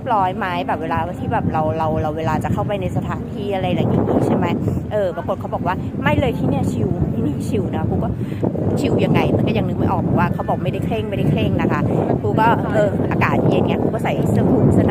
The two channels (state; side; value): identical; both; correlation 1.00